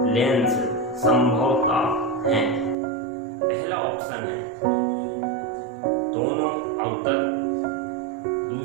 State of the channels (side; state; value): left; drops out; at 2.8 s